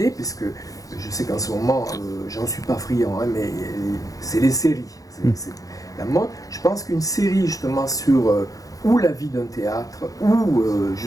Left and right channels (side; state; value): right; late; 0.17 ms